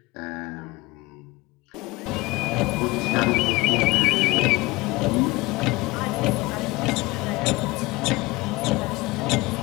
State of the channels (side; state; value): right; quieter; 22.2 dB